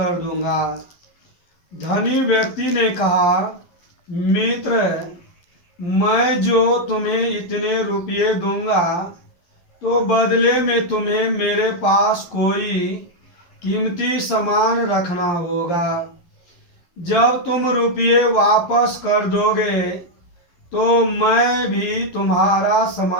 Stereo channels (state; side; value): late; right; 12 ms